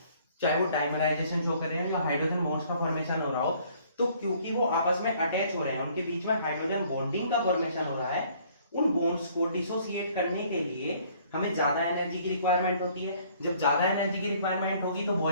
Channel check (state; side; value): inverted; both; correlation -0.60